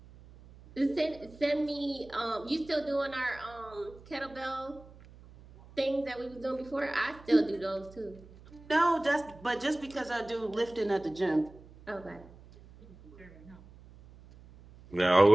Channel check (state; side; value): noise; right; hum, 21 dB below the sound